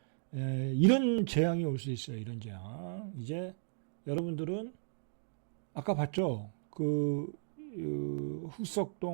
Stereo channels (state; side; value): silent; left; digital silence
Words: 이런 재앙이 올 수 있어요. 이런 재앙. 이제 여러분들은 아까 봤죠?